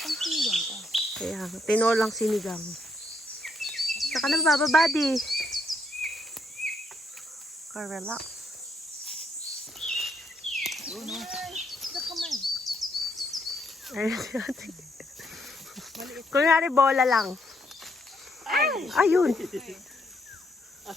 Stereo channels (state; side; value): normal; both; correlation 0.74